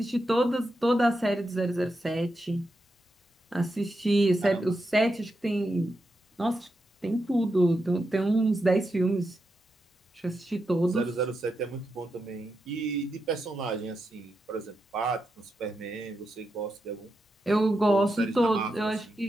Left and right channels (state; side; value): normal; both; correlation 0.86